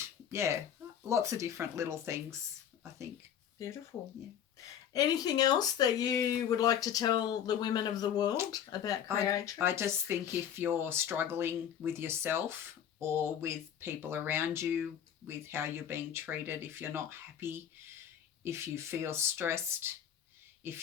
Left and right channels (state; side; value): quieter; right; 9.2 dB